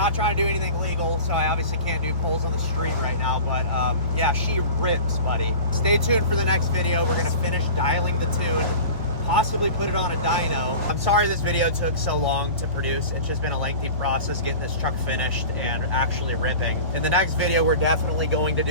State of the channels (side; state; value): both; inverted; correlation -0.36